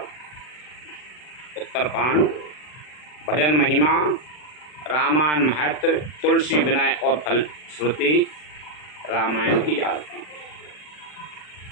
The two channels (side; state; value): right; late; 40 ms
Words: उत्तरकांड, भजन महिमा, रामायण महत्व, तुलसी विनय और फलश्रुति, रामायण की आरती।